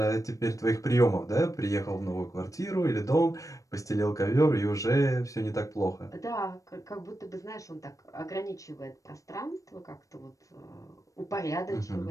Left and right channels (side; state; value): right; late; 0.16 ms